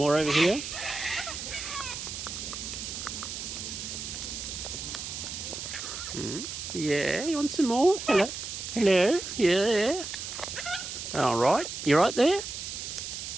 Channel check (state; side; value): noise; right; hiss, 7 dB below the sound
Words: over here? Yeah, you want some more? Hello? Hello? Yeah. Alright, you right there?